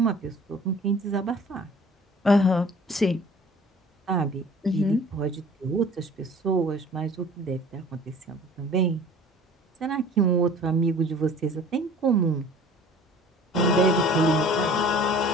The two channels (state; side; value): normal; both; correlation 0.47